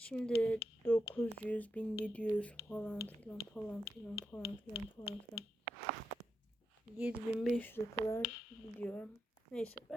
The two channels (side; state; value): both; normal; correlation 0.85